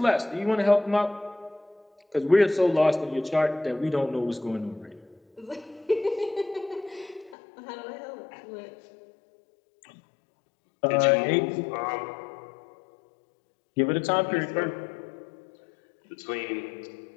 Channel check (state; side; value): drops out; right; at 7.4 s